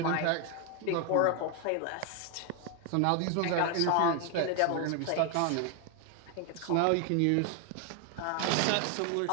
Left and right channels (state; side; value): different; both; correlation 0.01